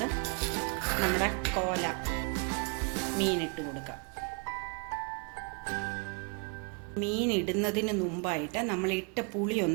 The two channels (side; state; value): left; quieter; 37.5 dB